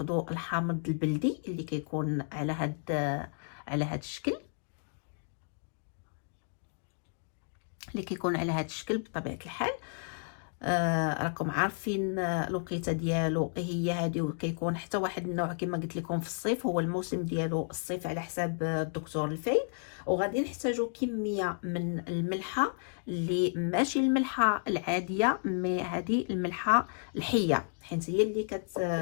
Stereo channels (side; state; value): right; silent; digital silence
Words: الحامض البلدي اللي كيكون على هاد الشكل، على هذا الشكل بطبيعه الحال. راكم عارفين الوقيته ديالو هي هذه، وكيكون حتى واحد النوع كما قلت لكم في الصيف، هو الموسم ديالو الصيف على حساب الدكتور الفايد. وغادي نحتاجوا كميه من الملحه اللي ماشي الملحه العاديه، مي هذه الملحه الحيه، حيت هي